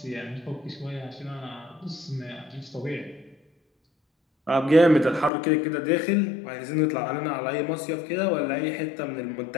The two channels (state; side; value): drops out; right; at 5.3 s